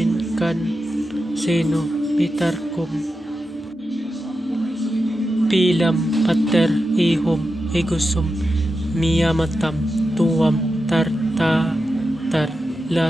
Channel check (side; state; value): both; normal; correlation 0.90